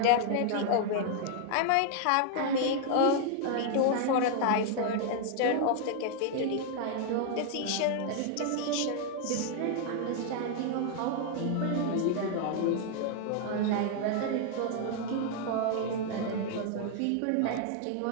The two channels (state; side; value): different; both; correlation 0.00